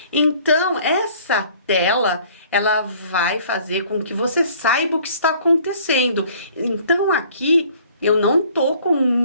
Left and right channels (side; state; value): both; inverted; correlation -0.55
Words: Então, essa tela, ela vai fazer com que você saiba o que está acontecendo. Então, aqui, eu não tô com